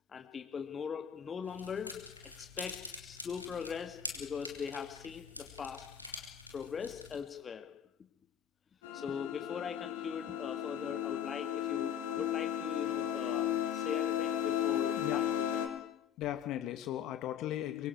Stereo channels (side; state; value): right; quieter; 8.8 dB